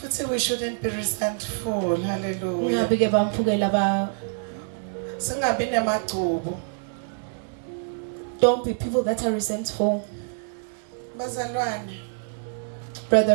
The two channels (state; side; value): silent; left; digital silence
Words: we shouldn't be resentful. Hallelujah. Ungabi ke bamphukela ba. Singabi nemagcubo. Don't be people that are resentful. Bazalwane.